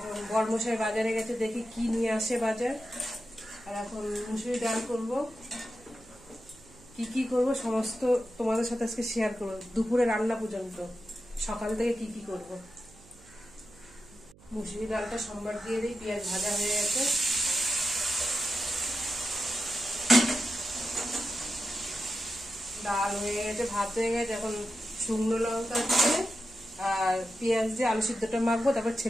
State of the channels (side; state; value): right; noise; hum, 24 dB below the sound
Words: বরমশাই বাজারে গেছে, দেখি কি নিয়ে আসে বাজার। আর এখন মুসুরি ডাল করব। কি কি করব সমস্ত তোমাদের সাথে আজকে শেয়ার করবো, দুপুরে রান্না পর্যন্ত, সকাল থেকে কি কি করব। মুসুরি ডালটা সম্বার দিয়ে দিই। পেঁয়াজ ভাজা হয়ে গেছে, ডাল হয়ে গেছে, ভাত হয়ে গেছে। এখন শুকনো লঙ্কা দিয়ে আর পেঁয়াজ দিয়ে আলু সিদ্ধটা মাখবো, তারপর